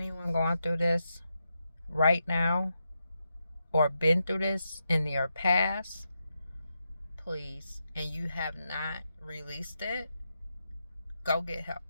going through this right now or been through this in your past, please, and you have not released it, go get help.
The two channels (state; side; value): inverted; both; correlation -0.85